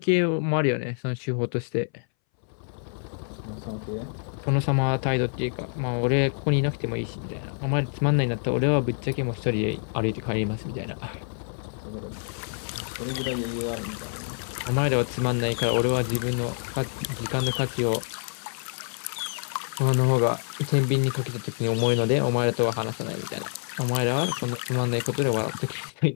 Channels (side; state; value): right; silent; 60 dB below the other